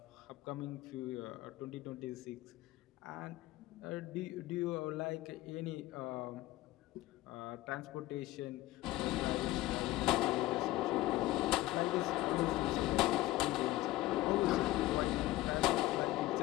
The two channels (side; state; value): right; quieter; 17.3 dB